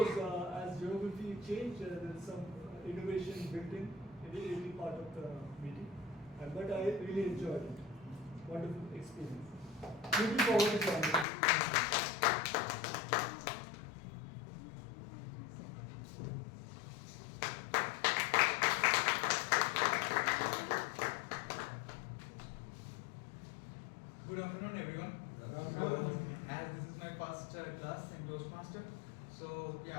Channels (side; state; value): right; drops out; at 11.2 s